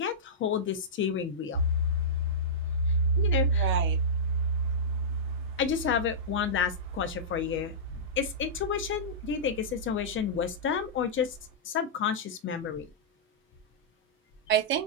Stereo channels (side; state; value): both; normal; correlation -0.14